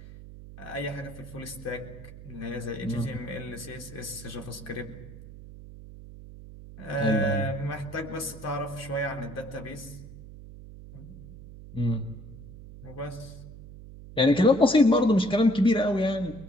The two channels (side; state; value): right; noise; hum, 15 dB below the sound